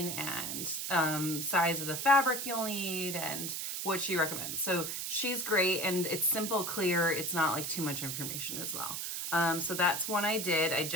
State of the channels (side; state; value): right; noise; hiss, 3 dB below the sound